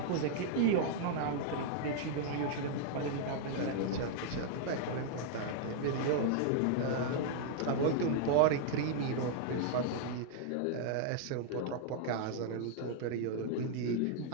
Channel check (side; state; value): both; different; correlation -0.01